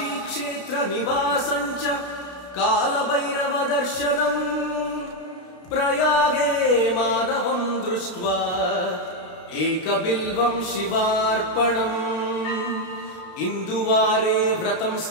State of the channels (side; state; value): right; late; 32 ms